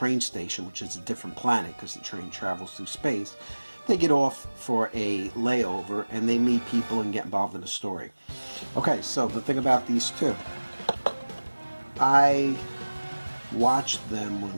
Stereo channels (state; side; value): inverted; both; correlation -1.00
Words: station, which is a different planet because the train travels through space, they get off for a layover and they meet people and get involved in a story. Okay, so the thing about these two, I watched them